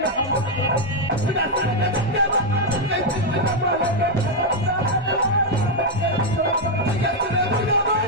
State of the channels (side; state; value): both; normal; correlation 0.01